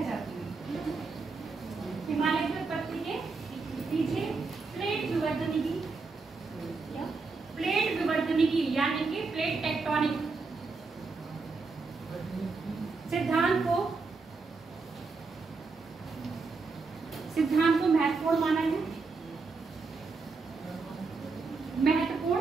जाती हूँ। हिमालय की उत्पत्ति के पीछे प्लेट विवर्तनिकी, क्या प्लेट विवर्तनिकी यानी कि प्लेट टेक्टोनिक सिद्धांत को महत्वपूर्ण माना है,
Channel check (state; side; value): quieter; left; 4.2 dB